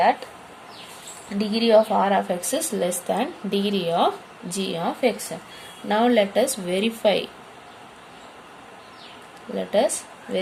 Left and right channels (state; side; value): identical; both; correlation 1.00